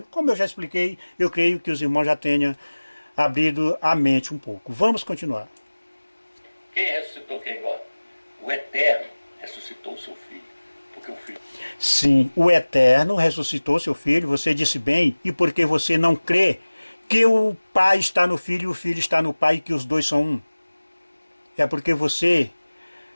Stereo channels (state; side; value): inverted; both; correlation -1.00